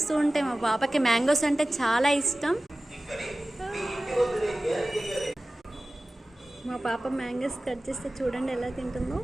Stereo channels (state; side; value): normal; both; correlation 0.96